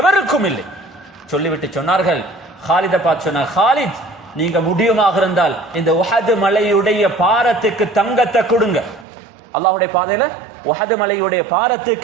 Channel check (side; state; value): left; drops out; at 9.1 s